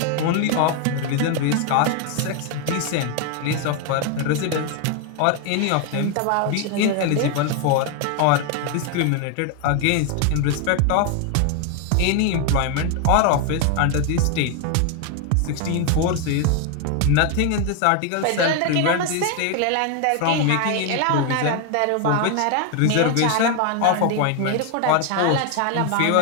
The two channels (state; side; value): different; both; correlation 0.01